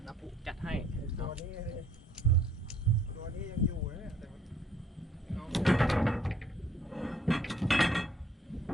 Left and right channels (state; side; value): normal; both; correlation 0.62